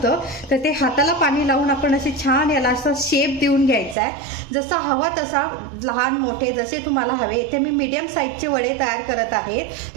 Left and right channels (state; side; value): drops out; left; at 4.0 s